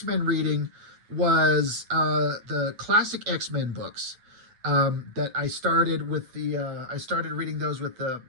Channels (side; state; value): left; late; 9.1 ms